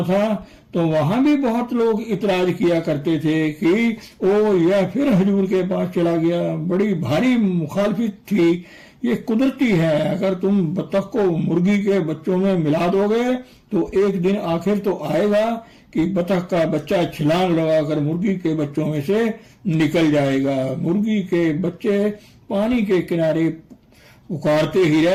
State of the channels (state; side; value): identical; both; correlation 1.00